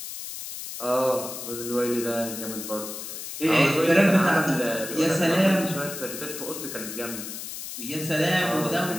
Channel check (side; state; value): left; noise; hiss, 8 dB below the sound